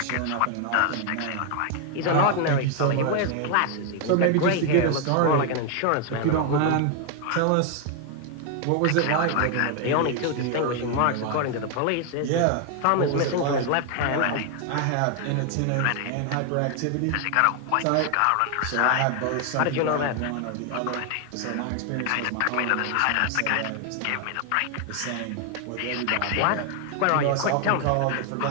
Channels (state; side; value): different; both; correlation 0.00